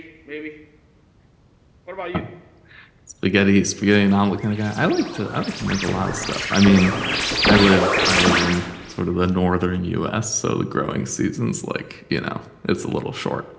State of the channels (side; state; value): both; identical; correlation 1.00